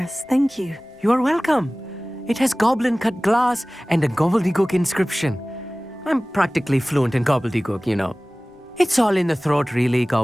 Thank you. You are welcome. It has goblin-cut glass and a gobbledygook inscription. I'm practically fluent in gobbledygook, you know. It's all in the throat, really,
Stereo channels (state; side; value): normal; both; correlation 0.98